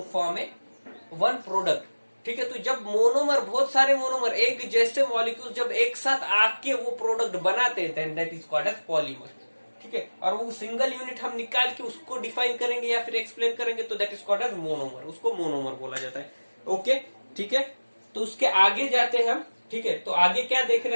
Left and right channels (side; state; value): both; inverted; correlation -1.00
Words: form a one product, ठीक है। तो जब मोनोमर, बहुत सारे मोनोमर एक जैसे मॉलिक्यूल जब एक साथ आके वो प्रोडक्ट बनाते हैं, that is called as polymer, ठीक है। और वो सिंगल यूनिट हम निकाल के उसको डिफाइन करेंगे या फिर एक्सप्लेन करेंगे तो that is called as monomer, उसको मोनोमर बोला जाता है, ओके, ठीक है। तो उसके आगे जाते हैं हम, ठीक है। तो आगे क्या देख